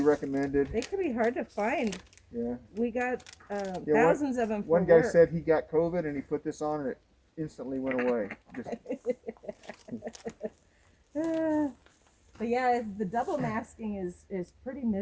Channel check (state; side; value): identical; both; correlation 1.00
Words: recommended. They could be hard to find. Yeah. We got Yeah, thousands of them for One guy work. said he got COVID and he put this on and it instantly went away. Just, But yeah, the double masking is pretty